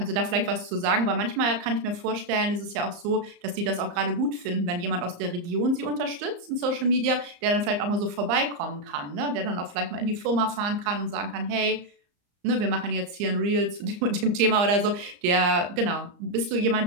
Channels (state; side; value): late; left; 34 ms